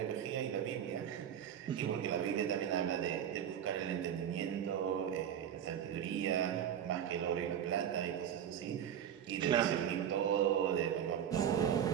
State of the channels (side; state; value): left; quieter; 9.4 dB